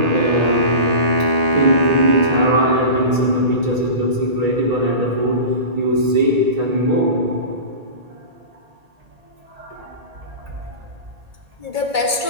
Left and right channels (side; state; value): left; late; 1.8 ms